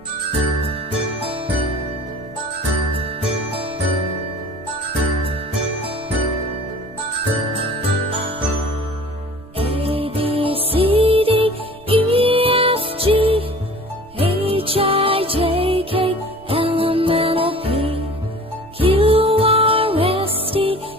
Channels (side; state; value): right; noise; rumble, 25 dB below the sound